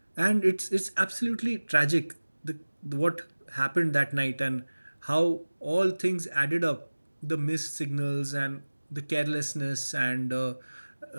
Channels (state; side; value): inverted; both; correlation -1.00